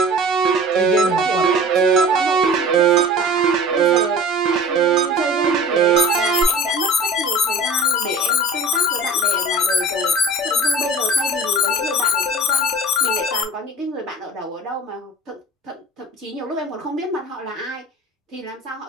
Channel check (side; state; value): both; normal; correlation 0.40